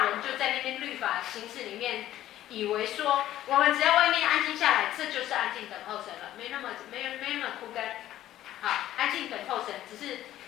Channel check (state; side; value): quieter; right; 13.3 dB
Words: 人就在那边律法形式里面，以为说我们只要外面安静下来，这就是安静等候神了，没那么枯干。好，安静等候神，只是